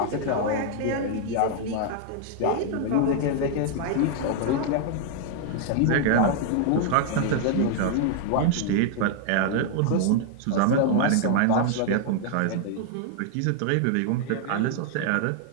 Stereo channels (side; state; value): both; different; correlation 0.00